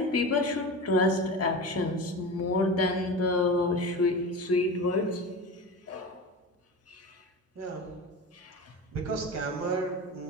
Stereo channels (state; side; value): normal; both; correlation 0.28